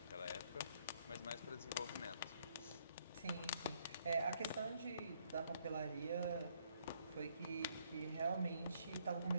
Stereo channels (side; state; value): both; inverted; correlation -0.69